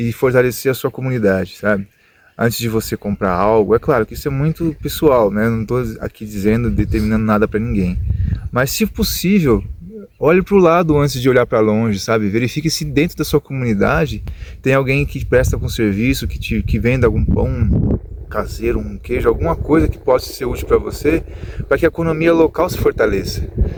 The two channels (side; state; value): both; identical; correlation 1.00